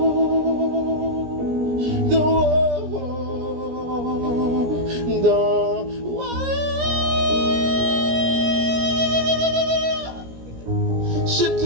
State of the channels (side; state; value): left; late; 17 ms